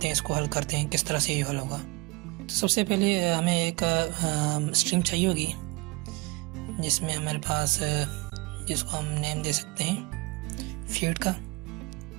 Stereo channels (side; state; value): left; quieter; 25.6 dB